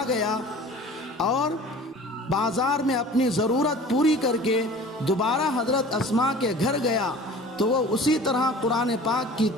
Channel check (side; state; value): both; normal; correlation 0.43